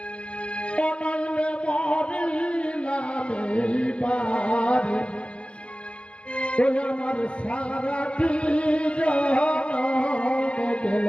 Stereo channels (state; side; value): late; right; 0.059 ms